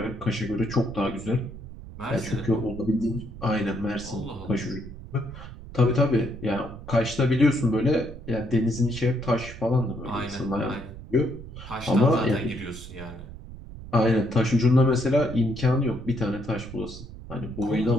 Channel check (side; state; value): right; noise; rumble, 13 dB below the sound